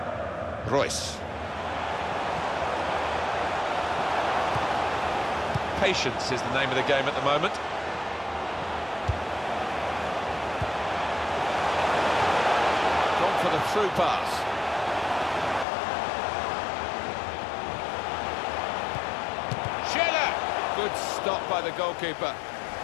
Royce. Patience is the name of the game at the moment. Gone for the through pass. Schiller! Good stop by the goalkeeper.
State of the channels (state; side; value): drops out; right; at 15.7 s